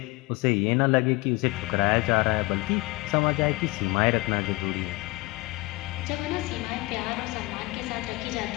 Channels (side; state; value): right; quieter; 23.1 dB